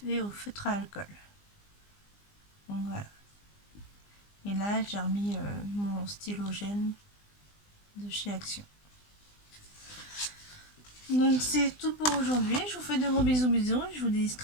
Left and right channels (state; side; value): late; right; 20 ms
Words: au feutre à alcool. Donc voilà. Et là, j'ai remis mon stylogène de chez Action. Donc c'est tout pour aujourd'hui. Je vous fais de gros bisous. Je vous dis